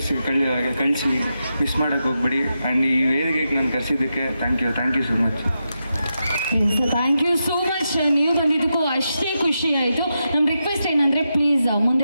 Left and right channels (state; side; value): inverted; both; correlation -0.87